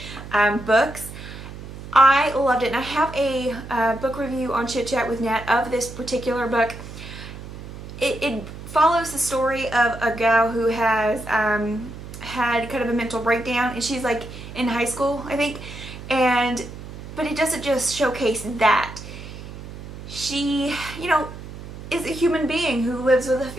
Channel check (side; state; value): right; noise; hum, 12 dB below the sound